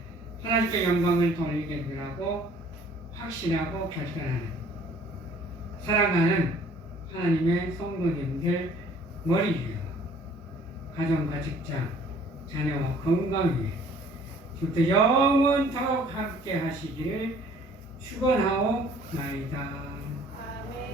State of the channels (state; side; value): normal; both; correlation 0.55